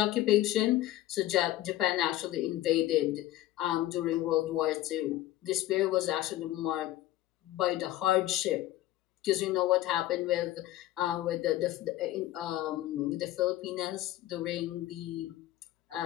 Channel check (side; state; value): right; quieter; 15.0 dB